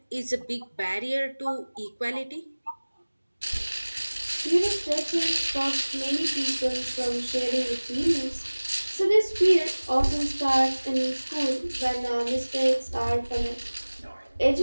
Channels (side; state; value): both; inverted; correlation -1.00